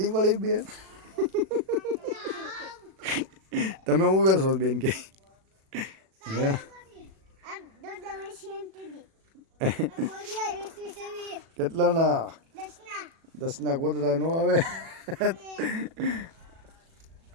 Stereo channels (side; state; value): left; late; 37 ms